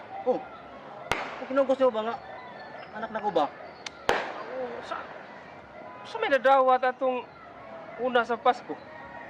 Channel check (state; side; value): identical; both; correlation 1.00